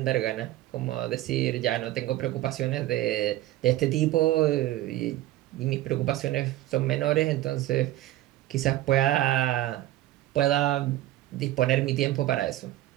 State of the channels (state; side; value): quieter; left; 15.1 dB